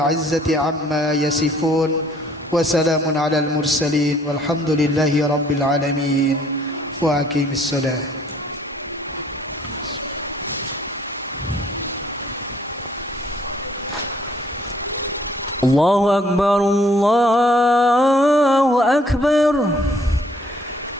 عما يصفون وسلام على المرسلين والحمد لله رب العالمين وأقيم الصلاة. الله أكبر الله أكبر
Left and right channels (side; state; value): both; normal; correlation 0.61